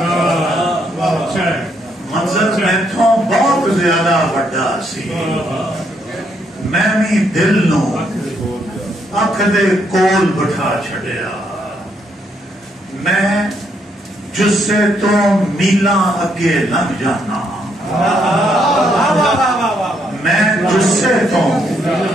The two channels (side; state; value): both; normal; correlation 0.74